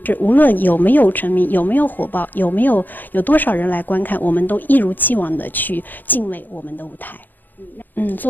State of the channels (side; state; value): right; late; 0.087 ms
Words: 是无论有没有成名，有没有火爆，有多少人来观看，我们都一如既往的去敬畏我们的舞台。